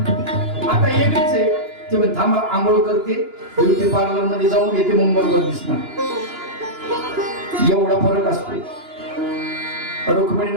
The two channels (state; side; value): late; left; 2.9 ms